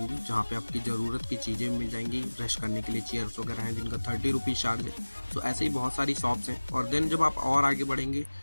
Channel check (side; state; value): both; inverted; correlation -1.00